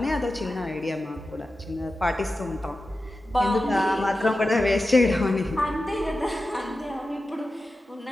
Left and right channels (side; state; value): both; normal; correlation 0.93